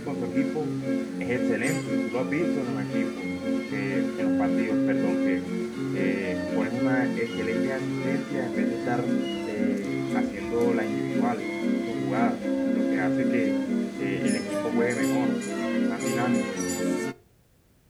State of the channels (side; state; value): both; identical; correlation 1.00